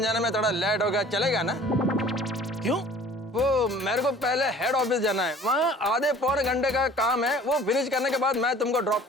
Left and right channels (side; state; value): both; normal; correlation 0.48